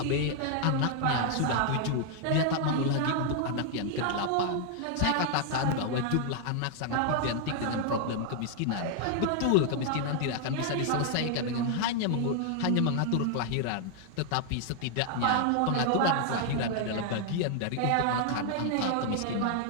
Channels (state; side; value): different; both; correlation 0.00